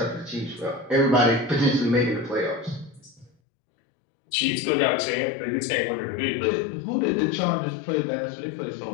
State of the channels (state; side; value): drops out; right; at 3.3 s